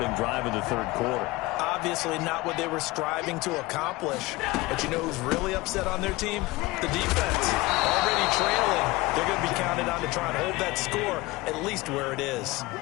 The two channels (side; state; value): right; quieter; 20.7 dB